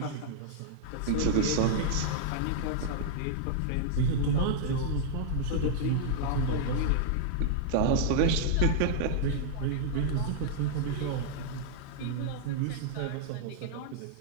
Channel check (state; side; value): different; both; correlation -0.01